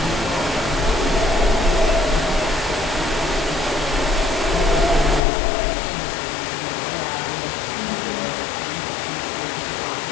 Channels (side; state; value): right; drops out; at 5.2 s